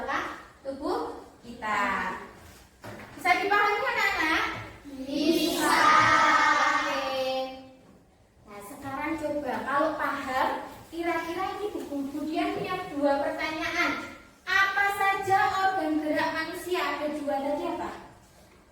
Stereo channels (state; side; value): identical; both; correlation 1.00